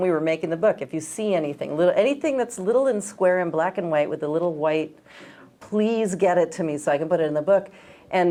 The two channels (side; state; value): both; identical; correlation 1.00